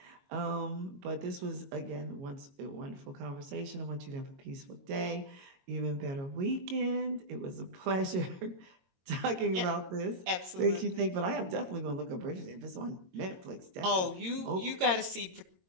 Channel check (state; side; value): late; left; 22 ms